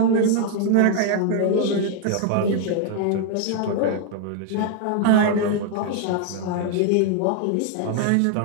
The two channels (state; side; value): different; both; correlation 0.00